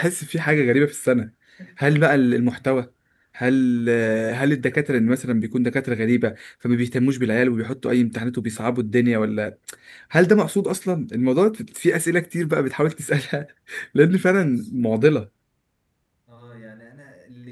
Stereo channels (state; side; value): identical; both; correlation 1.00